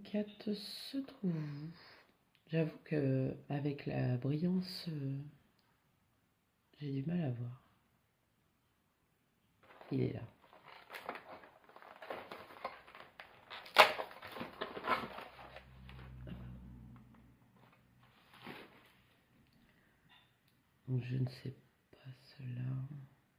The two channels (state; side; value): identical; both; correlation 1.00